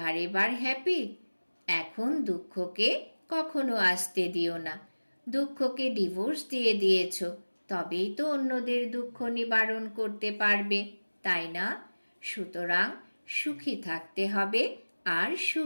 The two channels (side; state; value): both; inverted; correlation -1.00